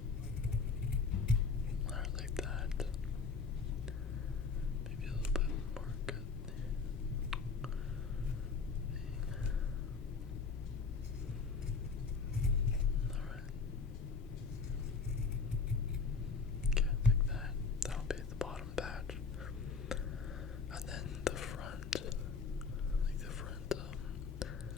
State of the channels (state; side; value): quieter; right; 4.9 dB